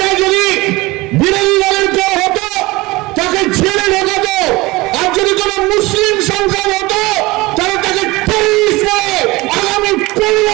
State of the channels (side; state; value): left; quieter; 21.8 dB